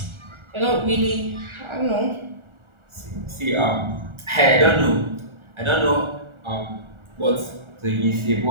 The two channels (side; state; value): left; late; 1.4 ms